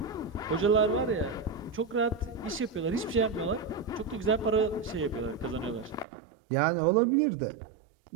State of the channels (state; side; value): drops out; left; at 6.1 s